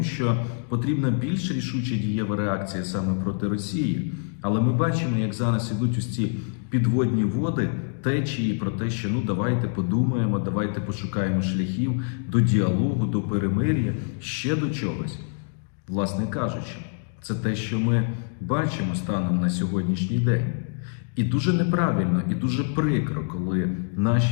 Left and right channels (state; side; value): silent; right; 61 dB below the other